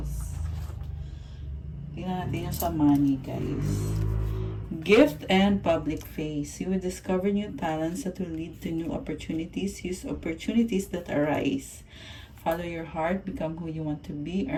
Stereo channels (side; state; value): both; identical; correlation 1.00